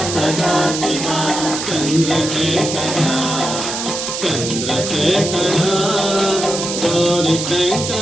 सदाशिव चंद्रशेखर चंद्रशेखर गौरी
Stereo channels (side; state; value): right; noise; hiss, 4 dB below the sound